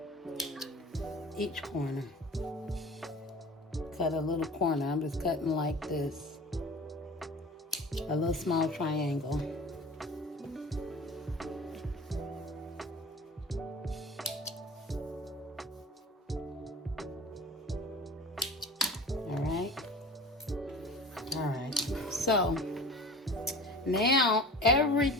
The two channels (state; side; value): normal; both; correlation 0.39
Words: each corner. Cut a little corner, I'm just cutting like this. A little small triangle. All right. So now